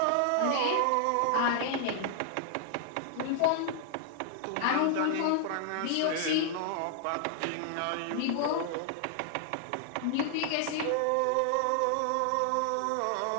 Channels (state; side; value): different; both; correlation -0.01